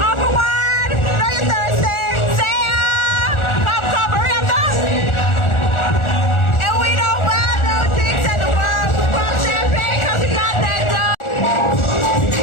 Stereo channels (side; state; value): right; late; 1.4 ms